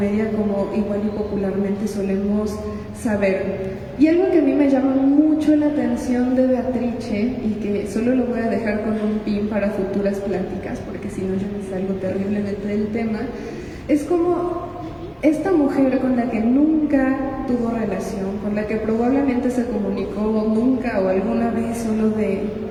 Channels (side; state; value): both; identical; correlation 1.00